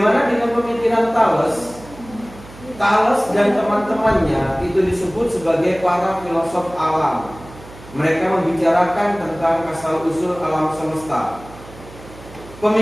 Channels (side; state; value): right; noise; hum, 19 dB below the sound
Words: dengan pemikiran Thales? Thales dan teman-temannya itu disebut sebagai para filosof alam. Mereka membicarakan tentang asal-usul alam semesta.